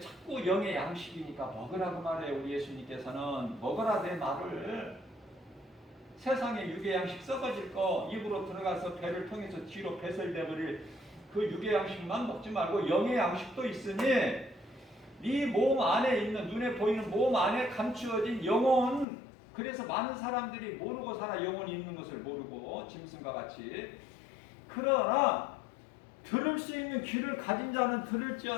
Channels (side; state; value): right; drops out; at 19.1 s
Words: 영의 양식이니까 먹으라고 말해요. 우리 예수님께서는 먹어라 내 말을. 세상에 육의 양식 썩어질 거 입으로 들어가서 배를 통해서 뒤로 배설되버릴 그 육의 양식만 먹지 말고 영의 양식도 있으니 네 몸 안에 있는 눈에 보이는 몸 안에 감추어진 영혼. 그래서 많은 사람들이 모르고 살아. 영혼이 있는 것을 모르고 짐승과 같이. 그러나 들을 수 있는 귀를 가진 자는